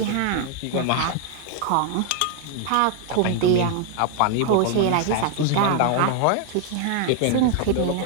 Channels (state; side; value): different; both; correlation 0.00